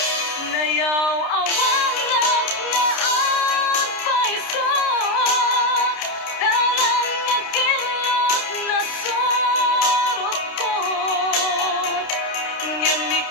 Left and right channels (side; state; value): right; late; 29 ms